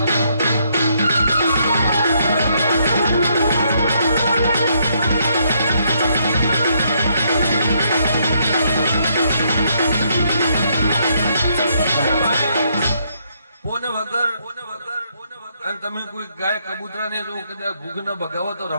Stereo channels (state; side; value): inverted; both; correlation -0.73